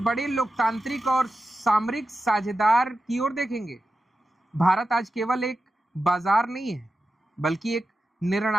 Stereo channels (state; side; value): normal; both; correlation 0.91